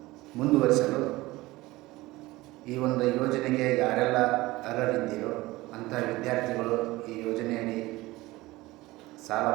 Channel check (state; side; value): quieter; left; 19.5 dB